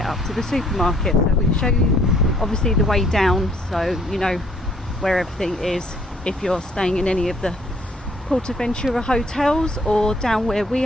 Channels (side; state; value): both; normal; correlation 0.62